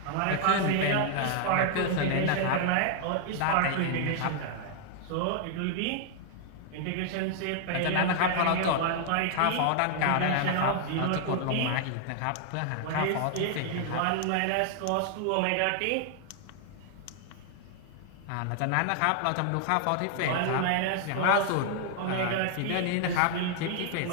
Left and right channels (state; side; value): different; both; correlation 0.00